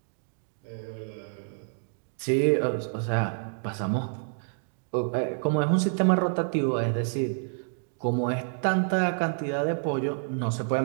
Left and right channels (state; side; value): silent; left; digital silence